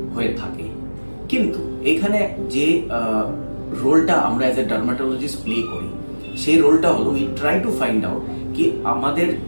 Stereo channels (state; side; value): inverted; both; correlation -1.00